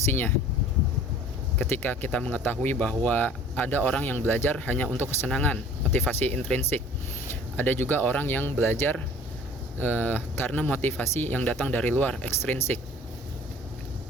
Ketika kita mengetahui bahwa ada orang yang belajar hanya untuk kesenangan, motivasi intrinsik. Ada juga orang yang belajar karena motivasi yang datang dari luar, ekstrinsik.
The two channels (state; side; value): normal; both; correlation 0.49